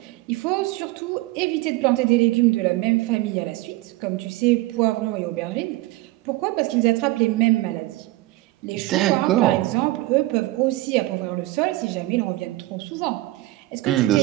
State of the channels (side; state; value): left; quieter; 18.9 dB